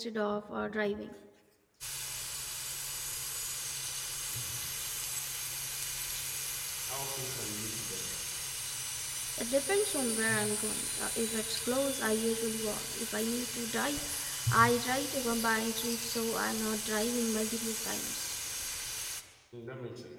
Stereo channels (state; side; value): identical; both; correlation 1.00